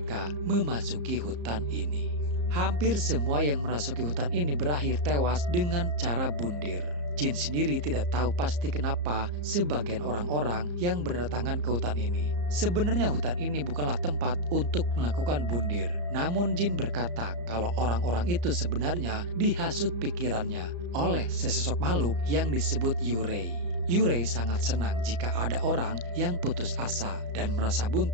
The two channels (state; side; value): late; left; 34 ms